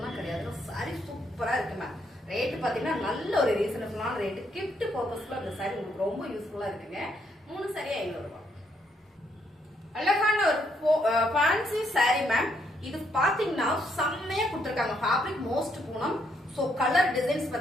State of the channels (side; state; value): both; normal; correlation 0.73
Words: தான் கிடையாது. சாரி சூப்பரா இருக்கு மேம். ரேட்டு பாத்தீங்கன்னா நல்ல ஒரு ரீசனபிளான ரேட்டு. கிஃப்ட் பர்பஸ்ல இந்த சாரி உங்களுக்கு ரொம்ப யூஸ்ஃபுல்லா இருக்குங்க. 3 சாரி 500 ரூபாய். அழகான ஒரு ஃபேன்சி சாரி மேம். இது பாத்தீங்கன்னா செம்மையா கொடுத்துருக்காங்க. Fabric most Poonam. So colour designs